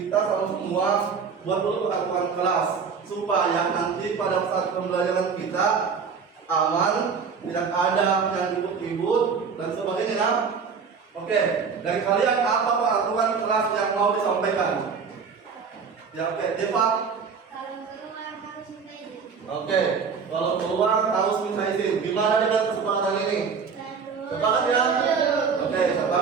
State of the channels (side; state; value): left; quieter; 5.8 dB